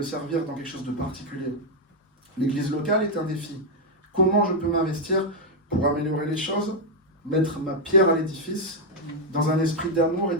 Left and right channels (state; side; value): normal; both; correlation 0.01